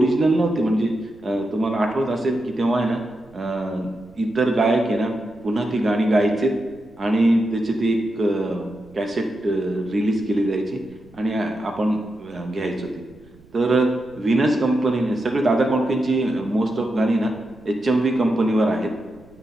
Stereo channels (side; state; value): right; noise; rumble, 26 dB below the sound